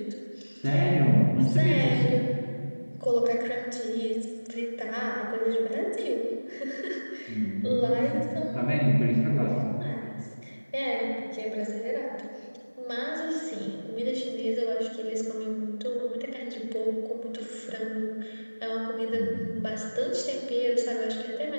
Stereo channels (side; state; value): both; inverted; correlation -1.00